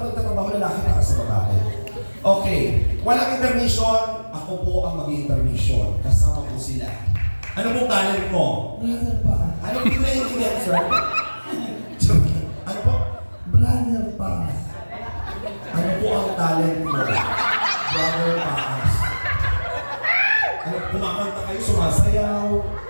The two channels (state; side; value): inverted; both; correlation -1.00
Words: nagtatrabaho, lalaki ka sa babae. Okay, walang intermission, ako po ang mag-intermission. Kasama po sila. Ano pong talent mo? Brother pa. Ano po naiintindihan, sir? Ano po? Brother pa. Ano po ang talent mo? Brother Paas. Ano, kumakanta kayo, sumasayaw?